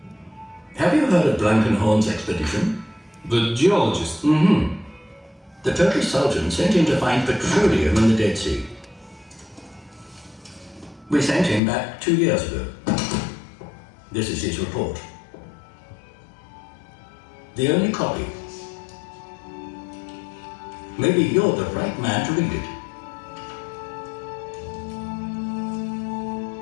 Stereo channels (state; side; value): drops out; right; at 11.6 s